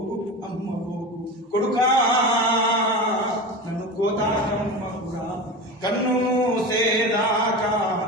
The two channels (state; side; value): normal; both; correlation 0.27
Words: కొడుకా నన్ను కోతాకమ్మకురా. కన్ను మూసేదాకా